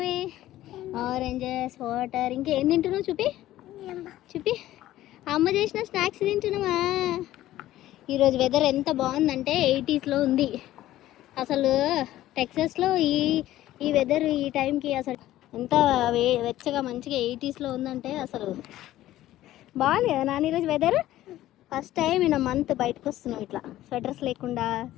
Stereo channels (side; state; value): right; quieter; 14.5 dB